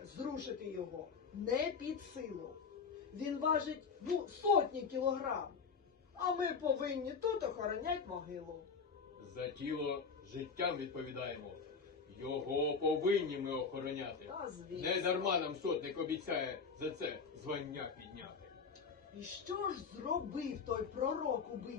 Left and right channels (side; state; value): right; quieter; 5.4 dB